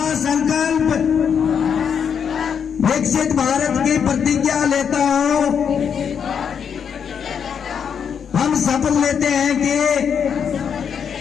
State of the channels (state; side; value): quieter; right; 7.4 dB